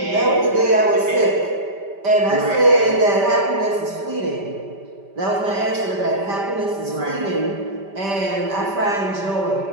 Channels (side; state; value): left; late; 5.1 ms